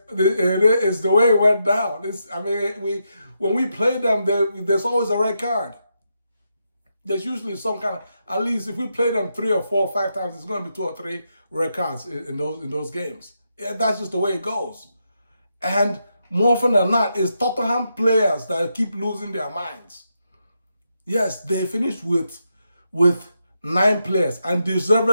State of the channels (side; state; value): both; inverted; correlation -0.83